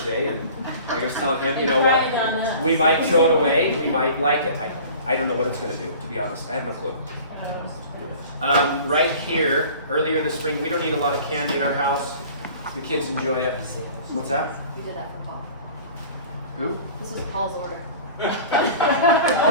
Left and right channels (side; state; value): both; inverted; correlation -0.44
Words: and like I was telling him, you know Try what? it on us. We might throw it away, we might like it. I don't know what it's gonna do, to be honest. I have no clue. Right here, earlier this spring, we don't eat a lot of candy in our house. The kids enjoy it. What's that? We did that for Paul. Who? This was Paul's order.